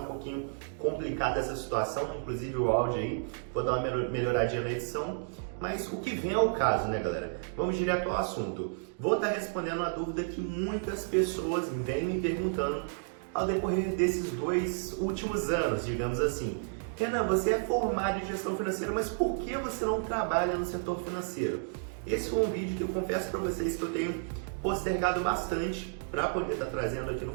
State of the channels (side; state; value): left; silent; digital silence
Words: um pouquinho complicada essa situação, inclusive o áudio aí, vou dar uma melhoradinha na edição. Mas o que vem ao caso, né galera? Vamos direto ao assunto. Vou estar respondendo a dúvida que muitas pessoas vêm me perguntando ao decorrer desses 2 últimos anos, digamos assim. Renan, você é formado em gestão financeira, mas por que você não trabalha no setor financeiro? Esse foi um vídeo que eu confesso para vocês que eu tenho postergado bastante para poder estar trazendo aqui no